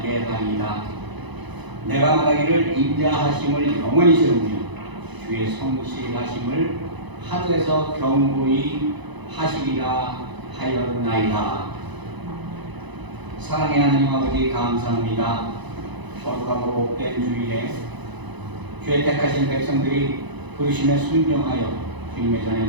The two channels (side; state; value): left; late; 1.0 ms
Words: 하리이다. 내가 말하기를 인자하심을 영원히 세우며 주의 성실하심을 하늘에서 경고히 하시리라 하였나이다. 사랑의 하나님 아버지, 감사합니다. 거룩하고 복된 주일에 주의 택하신 백성들이 부르심에 순종하여 주님의 전에